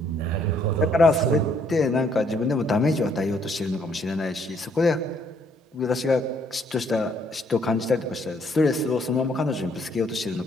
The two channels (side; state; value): both; normal; correlation 0.67